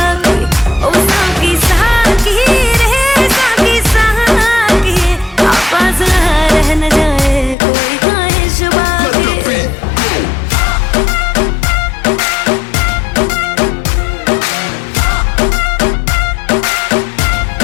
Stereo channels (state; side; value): drops out; right; at 7.6 s